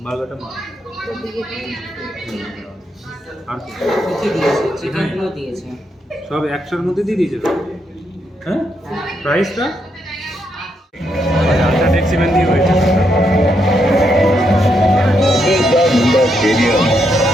বার্গারটা মা আর চিকেনগুলো দিয়েছে সব একশোর মধ্যে দিয়ে দিয়েছে তো। হ্যাঁ, প্রাইসটা আচ্ছা ট্যাক্সিম্যান দিয়ে হয়েছে। स्टेडियम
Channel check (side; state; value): both; normal; correlation 0.79